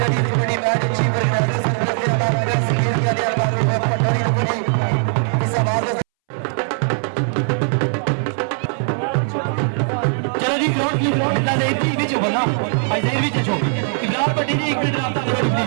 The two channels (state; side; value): silent; left; 64 dB below the other